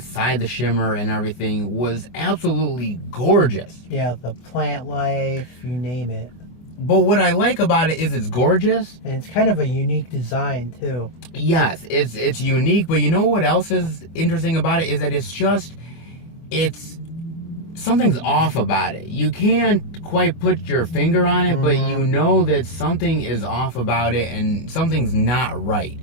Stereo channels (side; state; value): right; late; 24 ms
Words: the Shimmer and everything was absolutely gorgeous. Yeah, the plant life, you name it. But what I like about it is it's gorgeous. And it's kind of a unique design, too. Yes, it's unique, but you know what else is interesting about it is that it's something's off about it. You can't quite put your finger on it, but you know that something is off about it and something's not right.